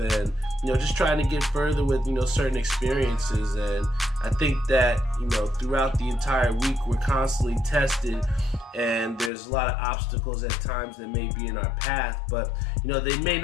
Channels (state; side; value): drops out; right; at 9.3 s